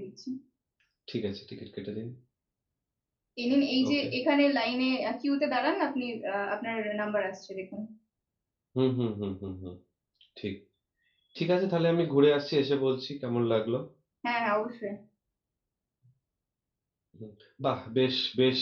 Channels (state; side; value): identical; both; correlation 1.00